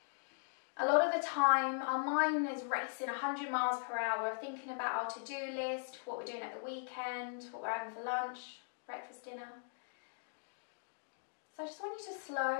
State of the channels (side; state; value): right; silent; digital silence